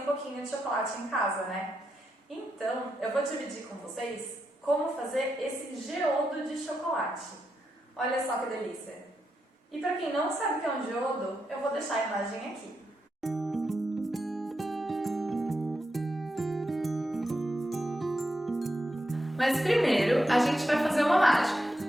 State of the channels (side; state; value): both; normal; correlation 0.85